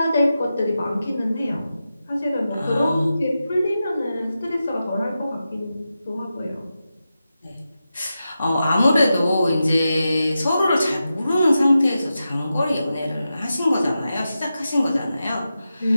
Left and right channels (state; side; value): inverted; both; correlation -0.91